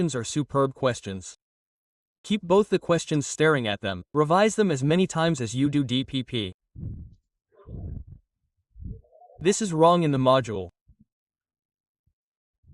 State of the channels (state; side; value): identical; both; correlation 1.00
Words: are superb questions. Keep both the questions staring at them. Revise them as many times as you do DPP. This is wrong in the module.